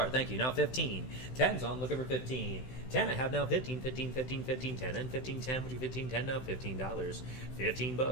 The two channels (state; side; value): late; right; 16 ms